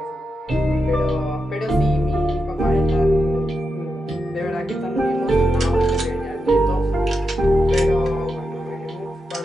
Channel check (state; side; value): normal; both; correlation 0.87